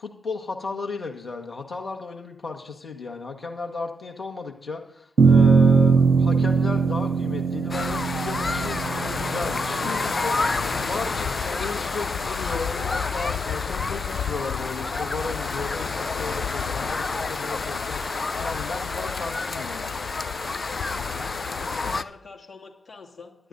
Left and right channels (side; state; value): both; normal; correlation 0.79